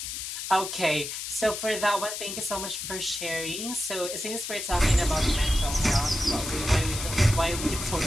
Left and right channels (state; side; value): noise; left; hiss, 6 dB below the sound